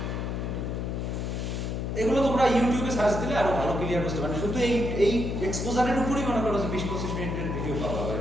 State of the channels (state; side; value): noise; left; hum, 2 dB below the sound